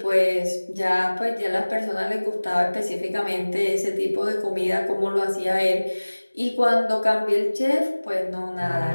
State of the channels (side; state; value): both; inverted; correlation -1.00